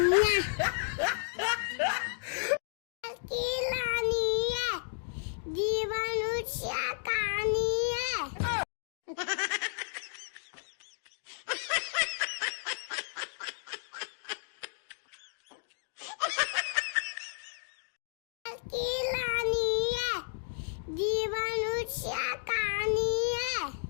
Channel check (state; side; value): silent; right; digital silence